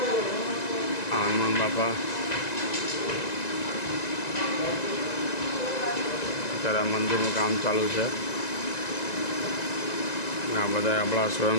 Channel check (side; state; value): right; late; 1.9 ms